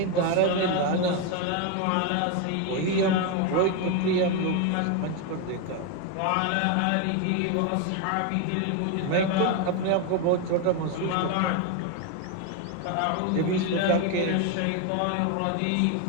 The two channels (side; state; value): both; different; correlation 0.02